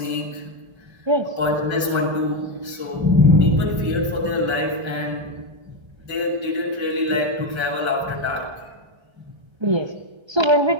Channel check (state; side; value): late; left; 1.3 ms